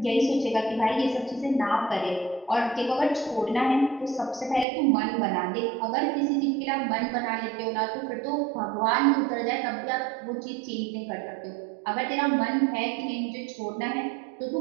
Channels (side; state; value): left; drops out; at 4.7 s